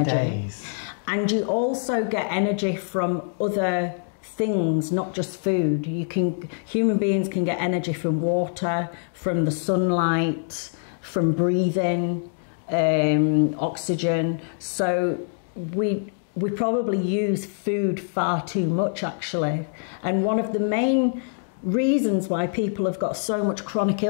Days. And you also get energy from other things, not just food. Human beings can get energy from water, from the sunlight, from breathing, oxygen. So we probably use food far too much, actually. And one of the main reasons why people have got so much chronic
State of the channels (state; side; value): silent; right; digital silence